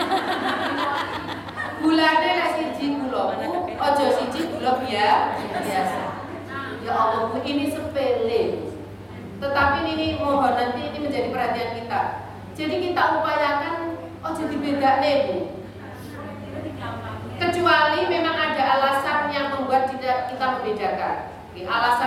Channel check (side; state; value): both; identical; correlation 1.00